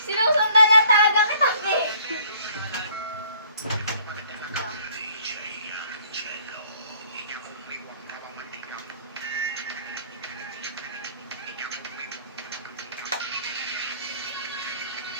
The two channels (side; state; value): both; inverted; correlation -0.59